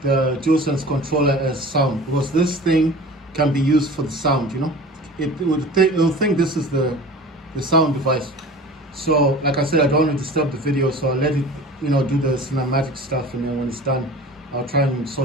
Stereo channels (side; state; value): both; normal; correlation 0.40